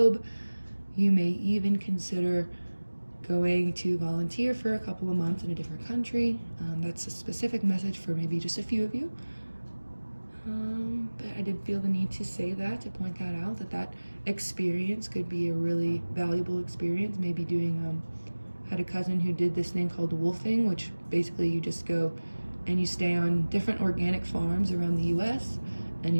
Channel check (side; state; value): both; inverted; correlation -1.00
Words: you may even consider going to volunteer for a couple of months in a different country. That's a specific message for maybe just a few of you. But I did feel the need to say that, to point that out, that experience could be a really valuable experience. Maybe doing, had a cousin who did this thing called wolfing, which basically you just go and you stay on different organic farms around the US, and